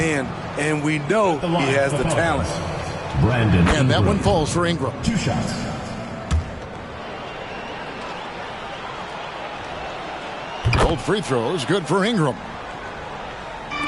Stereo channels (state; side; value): identical; both; correlation 1.00